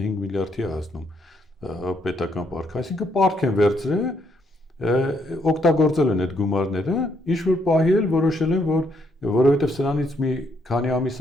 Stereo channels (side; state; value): both; normal; correlation 0.73